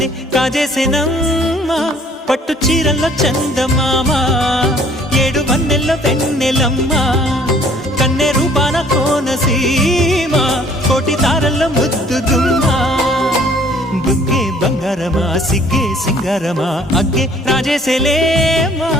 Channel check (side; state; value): both; normal; correlation 0.57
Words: కాజేసేనమ్మా పట్టు చీరల్లో చందమామా ఏడు వన్నెల్లో వెన్నెలమ్మా కన్నె రూపాన కోనసీమ కోటి తారల్లో ముద్దుదుమ్మా బుగ్గే బంగారమా సిగ్గే సింగారమా అగ్గే రాజేసేలేమా